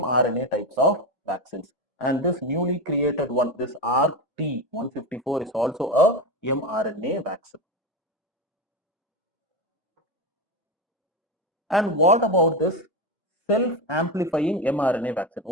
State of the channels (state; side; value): normal; both; correlation 0.15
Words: types of vaccines. And this newly created one, this RT-154, is also a mRNA vaccine. And what about this self-amplifying mRNA vaccine?